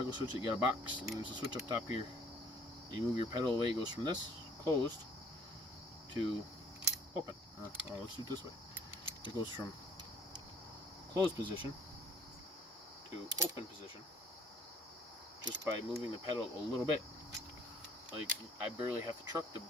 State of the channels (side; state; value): both; normal; correlation 0.58